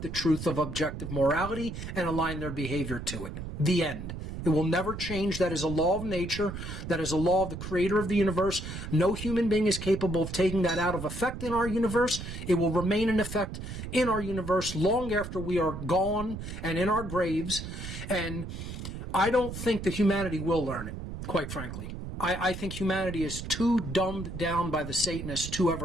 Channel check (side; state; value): right; noise; rumble, 8 dB below the sound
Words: the truth of objective morality and align their behavior to it. The end. It will never change. That is a law of nature. That is a law of the creator of the universe. No human being is capable of taking that out of effect in our universe. It will remain in effect in our universe long after we are gone and in our graves. And I don't think that humanity will learn it, quite frankly. I think humanity is too dumbed down by the Satanists to